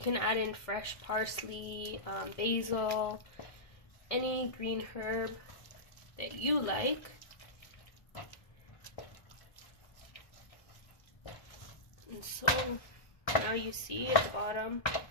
add in fresh parsley, basil, any green herb that you like. And so now you see at the bottom,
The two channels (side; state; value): right; late; 1.7 ms